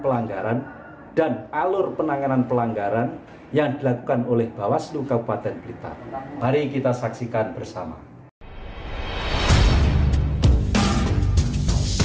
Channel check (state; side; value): identical; both; correlation 1.00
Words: pelanggaran dan alur penanganan pelanggaran yang dilakukan oleh Bawaslu Kabupaten Blitar. Mari kita saksikan bersama.